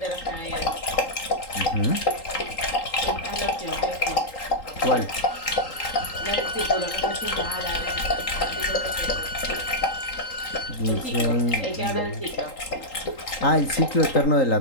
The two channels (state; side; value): late; right; 3.8 ms